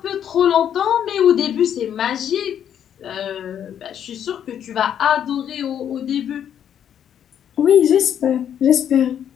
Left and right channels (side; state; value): right; quieter; 9.3 dB